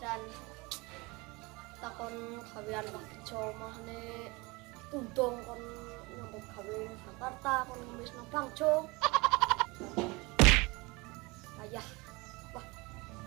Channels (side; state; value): left; quieter; 25.0 dB